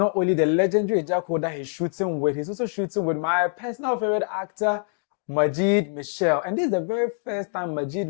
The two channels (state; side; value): silent; right; 62 dB below the other